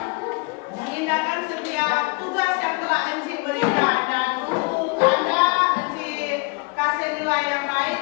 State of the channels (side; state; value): right; quieter; 29.9 dB